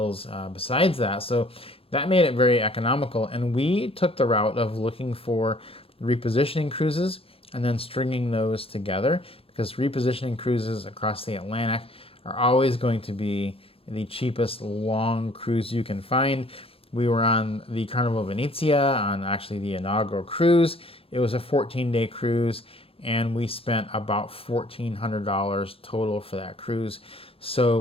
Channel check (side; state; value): right; late; 0.27 ms